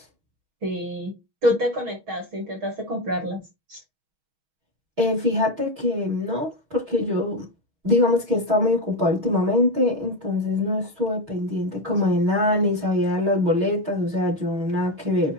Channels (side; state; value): left; late; 6.3 ms